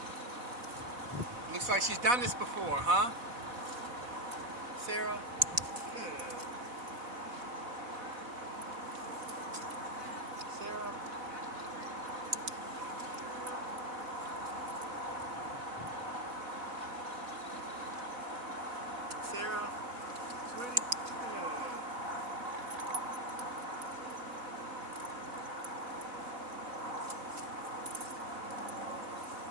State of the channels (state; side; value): late; left; 4.1 ms